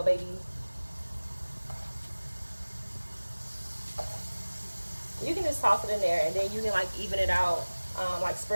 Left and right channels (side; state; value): both; inverted; correlation -1.00